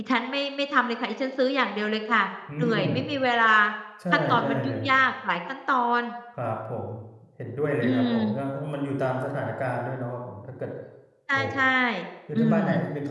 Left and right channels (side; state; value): both; identical; correlation 1.00